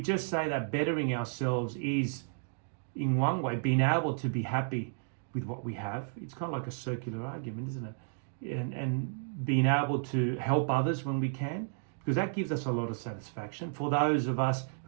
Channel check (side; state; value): left; silent; digital silence